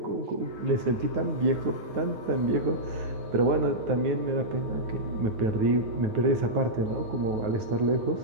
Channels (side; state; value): left; late; 9.3 ms